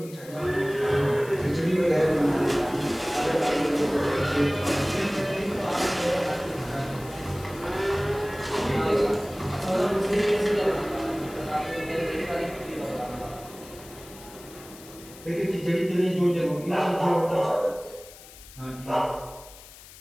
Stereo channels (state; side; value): noise; left; hiss, 19 dB below the sound